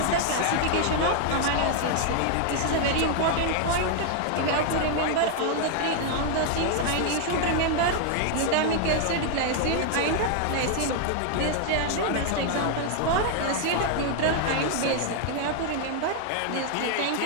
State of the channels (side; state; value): both; different; correlation 0.00